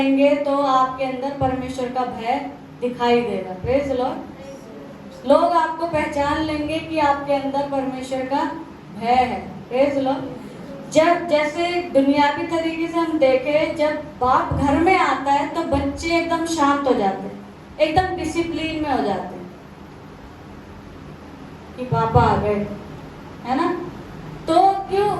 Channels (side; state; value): both; identical; correlation 1.00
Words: तो आपके अंदर परमेश्वर का भय दिखाई देगा। Praise the Lord. लोग आपको पहचान लेंगे कि आपके अंदर परमेश्वर का भय है। Praise the Lord. जब जैसे दुनियावी तरीके से हम देखें, जब बाप घर में आता है तो बच्चे एकदम शांत हो जाते हैं, एकदम डिसिप्लिन में हो जाते हैं कि पापा आ गए, है ना। तो क्यों